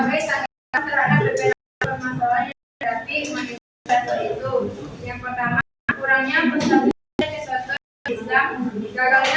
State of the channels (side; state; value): both; identical; correlation 1.00